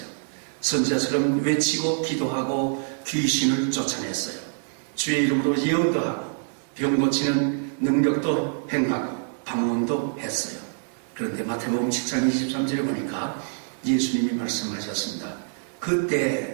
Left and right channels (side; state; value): left; silent; digital silence